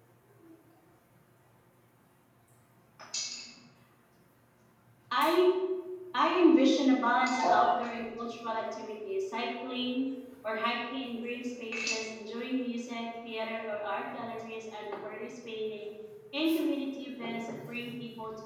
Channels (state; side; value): identical; both; correlation 1.00